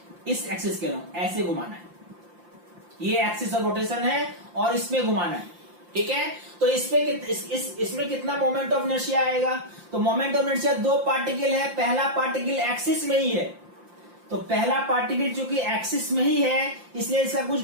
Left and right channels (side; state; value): left; late; 5.8 ms